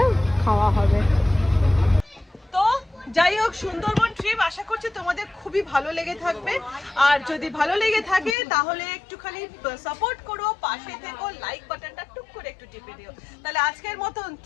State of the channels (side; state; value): right; drops out; at 8.3 s